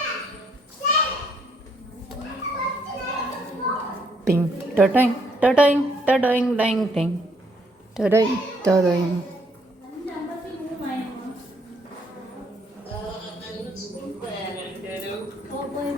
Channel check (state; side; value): normal; both; correlation 0.69